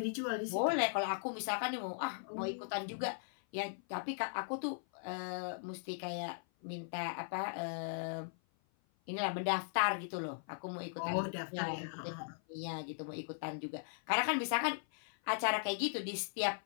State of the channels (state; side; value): silent; right; 52 dB below the other